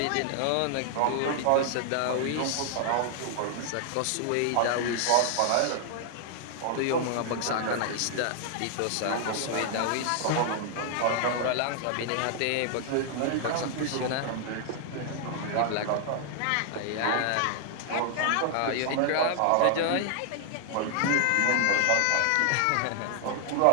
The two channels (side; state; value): both; different; correlation 0.00